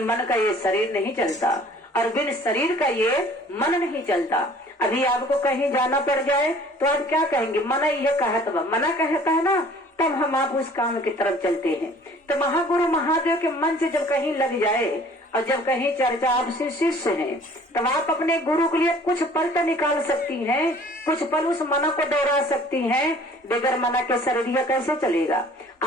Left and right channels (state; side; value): normal; both; correlation 0.52